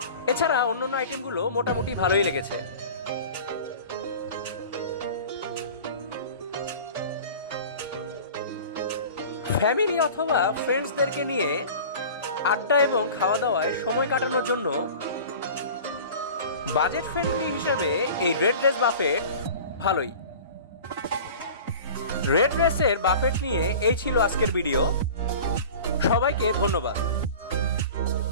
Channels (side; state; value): both; inverted; correlation -0.39